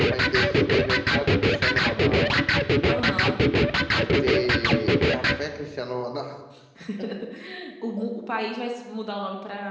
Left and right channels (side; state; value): both; identical; correlation 1.00